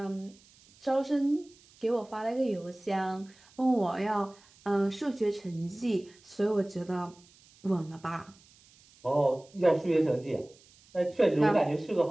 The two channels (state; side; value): noise; right; hiss, 28 dB below the sound